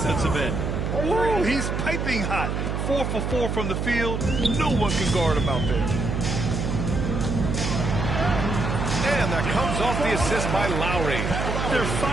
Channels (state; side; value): noise; right; hum, 1 dB below the sound